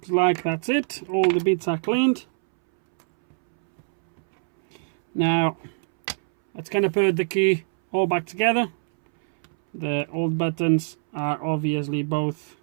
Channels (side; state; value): left; silent; 63 dB below the other